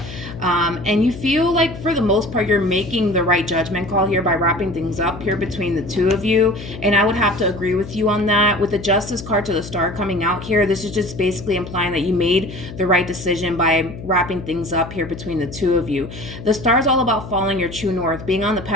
And you feel like, for the most part, you're making the right judgment call here by wrapping things up here between the two of you. And I would have to agree with you on that. With the Justice card to the Star coming out here, this is just basically implying that you made the right decision by wrapping things up here between the two of you. The Star is all about following your true north, being on the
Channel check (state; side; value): noise; left; hum, 12 dB below the sound